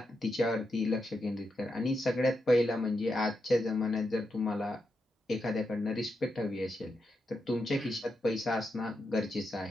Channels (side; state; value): both; normal; correlation 0.85